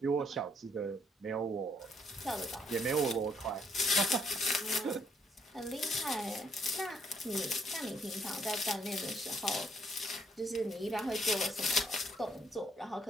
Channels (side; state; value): both; normal; correlation 0.70